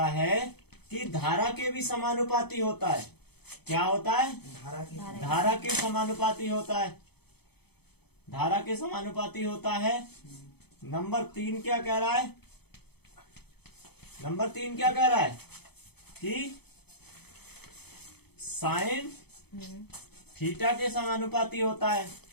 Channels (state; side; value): late; right; 0.98 ms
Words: है कि धारा के भी समानुपाती होता है। क्या होता है, धारा के समानुपाती होता है, धारा के समानुपाती होता है। नंबर 3 क्या कह रहा है, नंबर 3 क्या कह रहा है कि साइन थीटा के समानुपाती होता है।